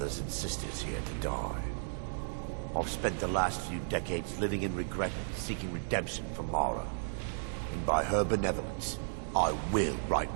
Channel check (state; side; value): silent; left; digital silence